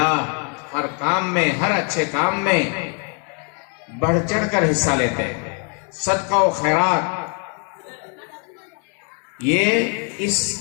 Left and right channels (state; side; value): quieter; right; 38.7 dB